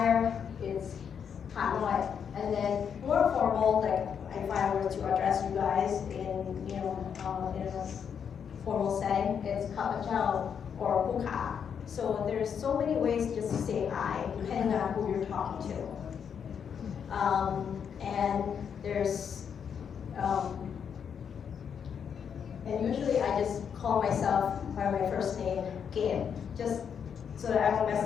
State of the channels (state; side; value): quieter; right; 7.5 dB